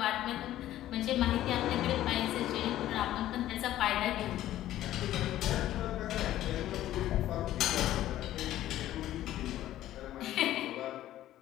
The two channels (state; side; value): quieter; right; 13.5 dB